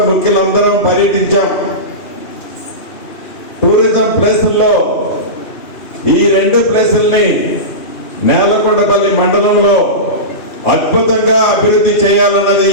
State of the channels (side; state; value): right; late; 2.8 ms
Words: ముఖ్యులందరం పర్యటించాం. టూరిజం ప్లేసుల్లో ఈ 2 ప్లేసుల్ని నేలకొండపల్లి మండలంలో అద్భుతంగా అభివృద్ధి చేయాలన్నది